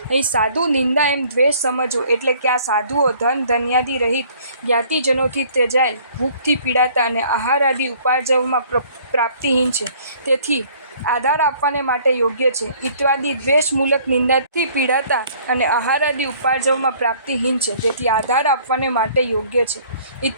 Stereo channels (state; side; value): inverted; both; correlation -0.56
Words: અહીં સાધુ નિંદા એમ દ્વેષ સમજવો એટલે કે આ સાધુઓ ધન ધન્યાદિ રહિત જ્ઞાતિજનોથી ત્યજાયેલ, ભૂખથી પીડાતા અને આહાર આદિ ઉપાર્જવમાં પ્રાપ્તિહીન છે, તેથી આધાર આપવાને માટે યોગ્ય છે। ઇત્યાદિ દ્વેષ મૂલક નિંદાથી પીડાતા અને આહાર આદિ ઉપાર્જવમાં પ્રાપ્તિહીન છે, તેથી આધાર આપવાને માટે યોગ્ય છે।